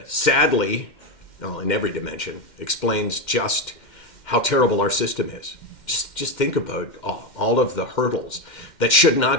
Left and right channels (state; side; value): late; right; 2.1 ms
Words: sadly, in every dimension, explains just how terrible our system is. Just think about all of the hurdles that should